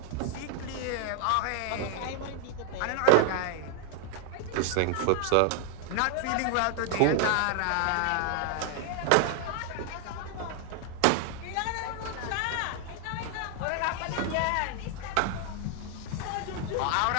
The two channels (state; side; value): different; both; correlation 0.00